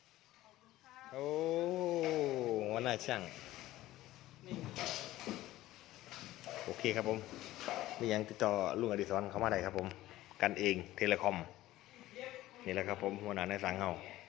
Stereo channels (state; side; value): quieter; right; 15.8 dB